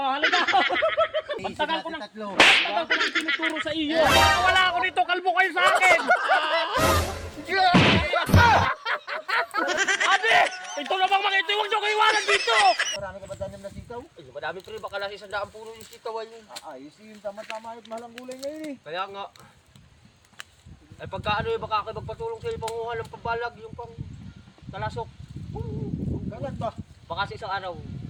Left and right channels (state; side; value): identical; both; correlation 1.00